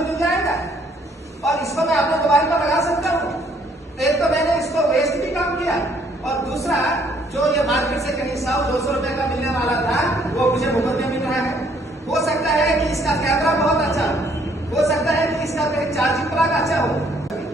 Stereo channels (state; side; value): normal; both; correlation 0.64